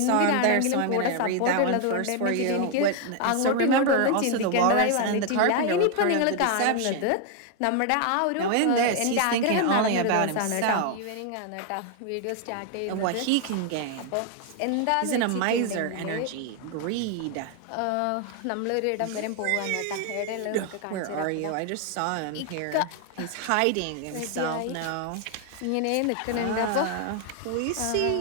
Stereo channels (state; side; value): different; both; correlation 0.00